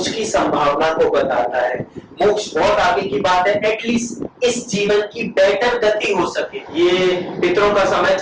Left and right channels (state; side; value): identical; both; correlation 1.00